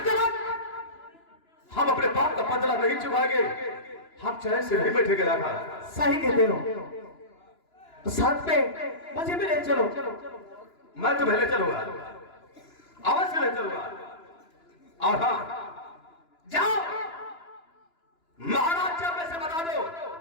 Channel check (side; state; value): right; late; 2.9 ms